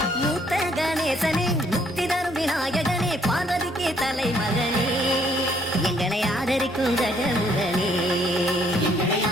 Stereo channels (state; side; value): normal; both; correlation 0.66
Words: மூத்த கணேசனே முக்தி தரும் விநாயகனே பார்வதிக்கு தலைமகனே எங்களை ஆதரிக்கும் கஜமுகனே